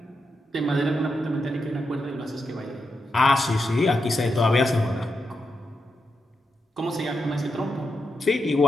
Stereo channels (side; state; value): both; normal; correlation 0.86